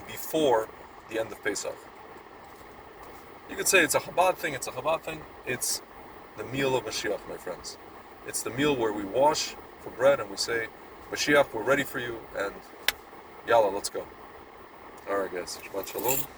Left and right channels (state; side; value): identical; both; correlation 1.00